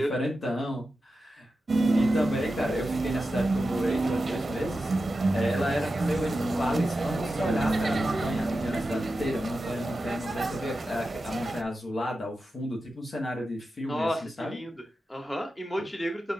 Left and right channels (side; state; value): both; normal; correlation 0.91